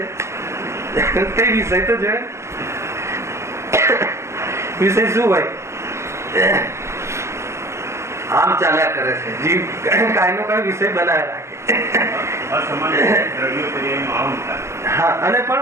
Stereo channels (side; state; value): left; late; 0.13 ms